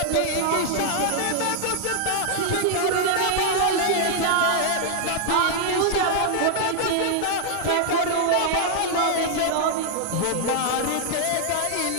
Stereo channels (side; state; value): both; different; correlation -0.01